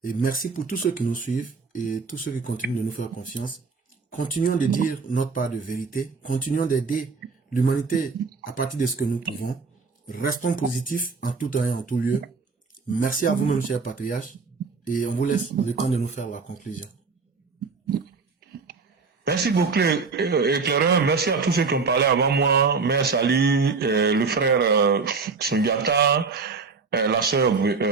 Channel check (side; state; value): left; quieter; 4.6 dB